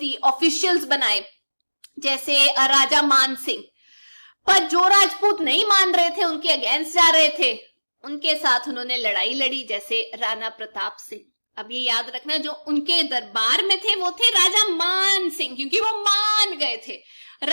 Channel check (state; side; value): inverted; both; correlation -1.00